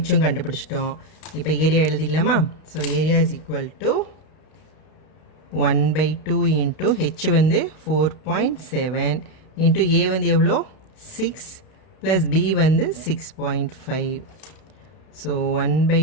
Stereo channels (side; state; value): right; late; 32 ms